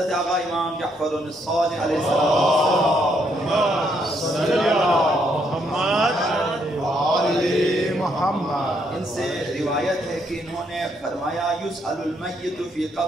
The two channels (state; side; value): normal; both; correlation 0.73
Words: آقا امام جعفر الصادق علیہ السلام ان سے روایت ہے کہ انہوں نے فرمایا یسأل المیت فی